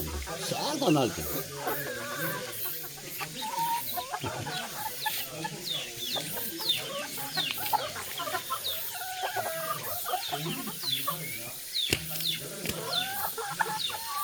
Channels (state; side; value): identical; both; correlation 1.00